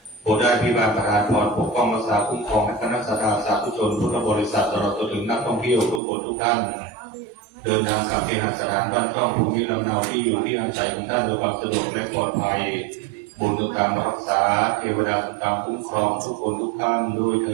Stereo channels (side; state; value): left; drops out; at 6.0 s